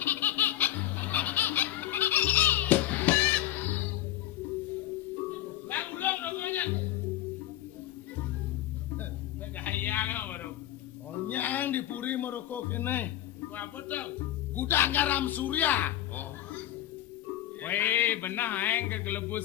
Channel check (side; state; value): right; quieter; 13.5 dB